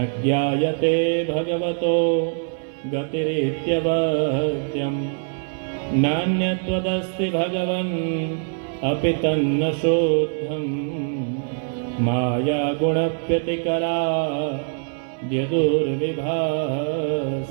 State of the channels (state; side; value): silent; left; 63 dB below the other